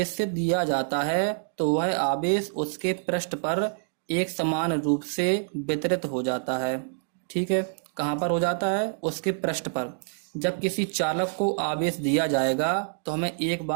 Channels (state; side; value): silent; left; digital silence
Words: दिया जाता है तो वह आवेश उसके पृष्ठ पर एक समान रूप से वितरित हो जाता है। ठीक है, कहाँ पर हो जाता है, उसके पृष्ठ पर। जब किसी चालक को आवेश दिया जाएगा तो हमें एक